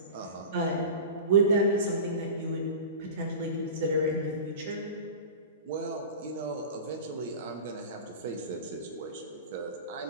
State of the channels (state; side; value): inverted; both; correlation -0.32